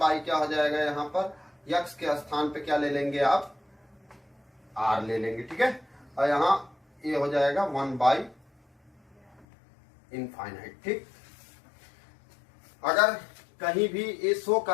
क्या हो जाएगा, यहाँ पर x के स्थान पे क्या ले लेंगे आप, r ले लेंगे। ठीक है, और यहाँ ये हो जाएगा 1/∞। ठीक, अगर कहीं भी ये शो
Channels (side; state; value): right; drops out; at 9.5 s